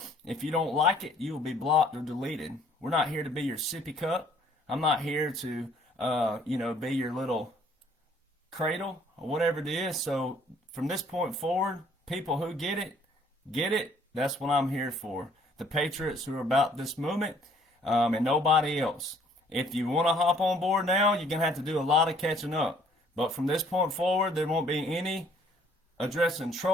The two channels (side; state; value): both; normal; correlation 0.60